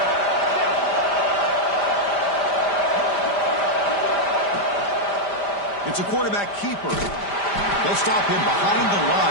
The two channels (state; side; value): late; right; 5.0 ms